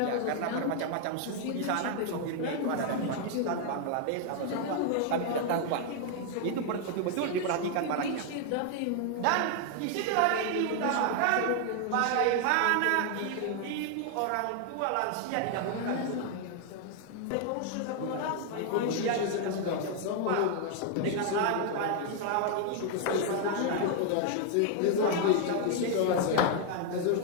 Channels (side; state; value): both; different; correlation 0.00